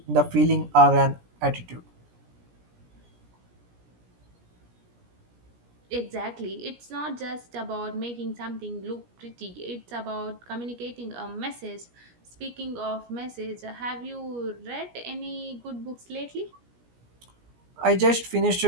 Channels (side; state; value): left; late; 17 ms